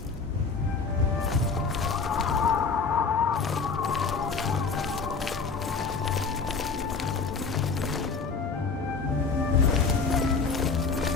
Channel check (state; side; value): quieter; right; 4.9 dB